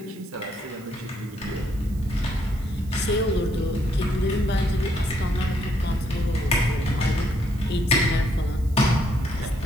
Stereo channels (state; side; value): noise; right; hiss, 24 dB below the sound